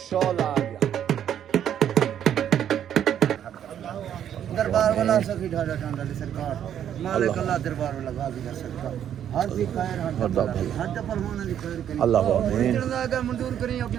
शोला आ गया दरबार वाला सखी ढाडा ढांडा सरकार मालिक अल्लाह दरबार वाला गाजी दा सरकार हर दी खैर हर पहलवान दी खैर करी अल्लाह आमीन जाएगा मंजूर करी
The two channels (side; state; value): left; quieter; 9.8 dB